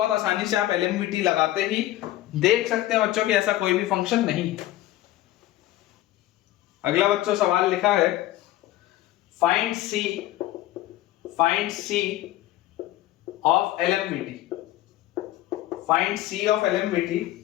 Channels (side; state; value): right; quieter; 15.1 dB